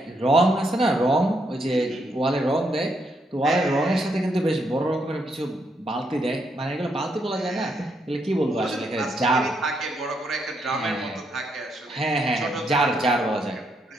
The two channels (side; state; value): both; normal; correlation 0.77